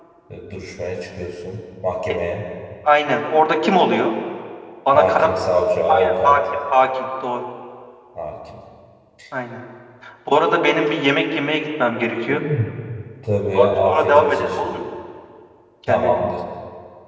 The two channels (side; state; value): both; identical; correlation 1.00